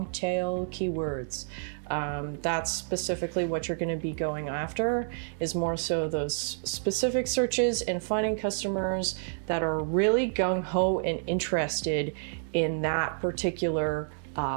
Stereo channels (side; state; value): left; silent; digital silence